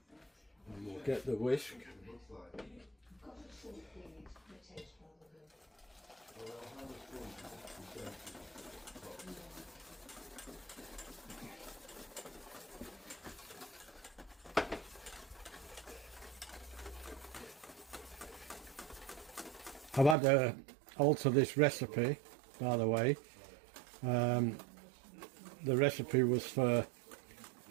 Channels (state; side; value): drops out; left; at 20.2 s